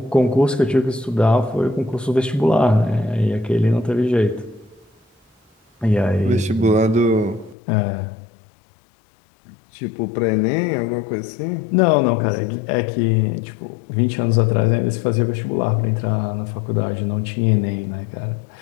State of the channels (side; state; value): right; drops out; at 7.6 s